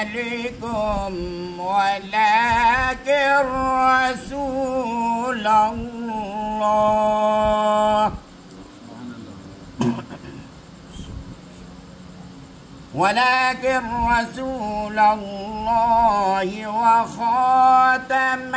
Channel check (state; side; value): identical; both; correlation 1.00